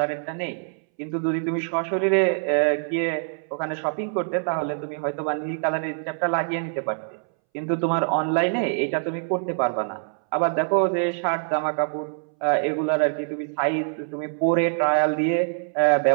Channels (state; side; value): silent; left; 62 dB below the other